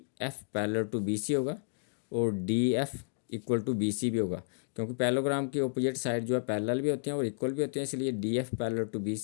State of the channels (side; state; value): right; silent; digital silence